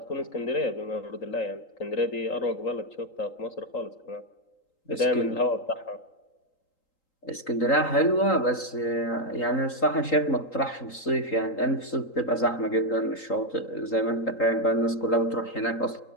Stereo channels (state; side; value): late; right; 3.8 ms